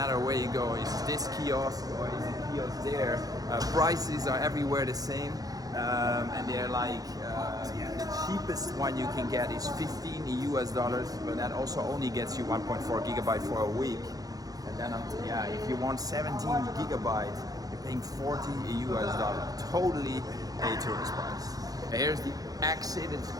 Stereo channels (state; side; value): late; left; 0.18 ms